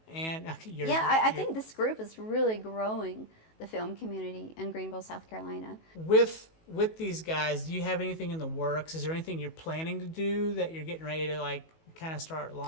And I think this group is really growing the film community in Greenville, South Carolina. With these guys, do you have anything in the works? Is there anything you're planning to do that you're getting ready to like kind of start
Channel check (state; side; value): late; right; 19 ms